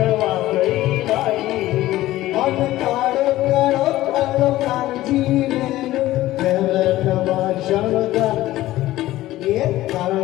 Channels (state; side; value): quieter; right; 15.9 dB